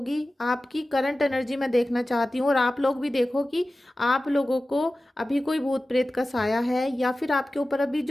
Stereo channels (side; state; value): both; normal; correlation 0.96